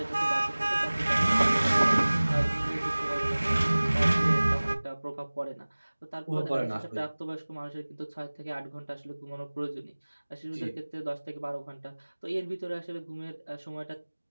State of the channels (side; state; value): both; inverted; correlation -1.00